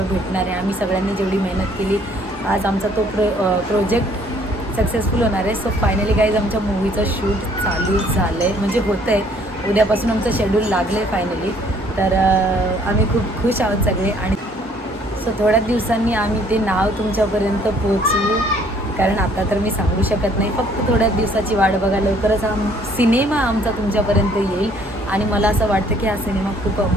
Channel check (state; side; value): normal; both; correlation 0.61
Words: भेटणार आहे. आम्ही सगळ्यांनी जेवढी मेहनत केली, आज आमचा तो प्रोजेक्ट सक्सेसफुल होणार आहे. सो फायनली गाईज आमच्या मूवीचं शूट चालू झालं आहे, म्हणजे होतं आहे. उद्यापासून आमचं शेड्यूल लागलं आहे फायनली. तर आम्ही खूप खुश आहोत सगळे. आणि सो थोड्याच दिवसांनी आम्ही ते नाव तुमच्यापर्यंत पोचवू, कारण आता तर मी सांगू शकत नाही. फक्त थोड्याच दिवसाची वाट बघा, लवकरच हा सिनेमा आमचा तुमच्यापर्यंत येईल. आणि मला असं वाटतं की हा सिनेमा खूप